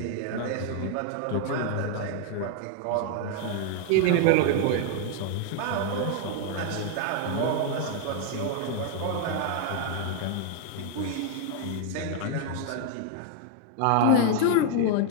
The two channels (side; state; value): both; different; correlation 0.00